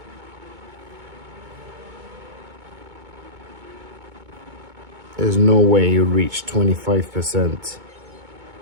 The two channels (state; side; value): late; left; 2.2 ms